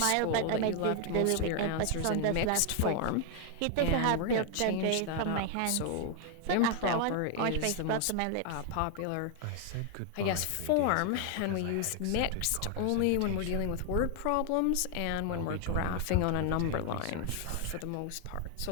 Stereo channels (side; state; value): both; different; correlation 0.00